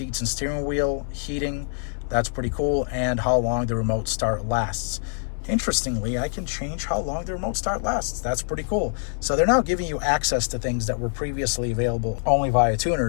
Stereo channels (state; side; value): silent; right; 58 dB below the other